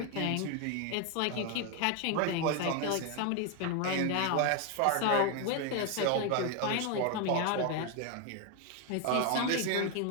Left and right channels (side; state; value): both; different; correlation 0.01